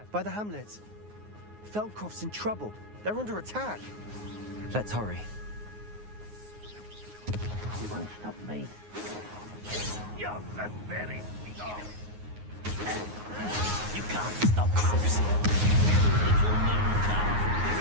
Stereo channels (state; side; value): late; left; 9.5 ms